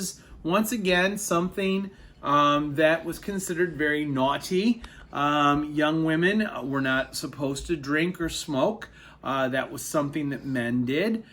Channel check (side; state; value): both; identical; correlation 1.00